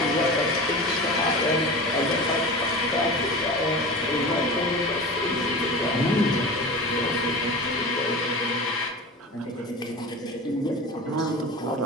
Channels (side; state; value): both; normal; correlation 0.32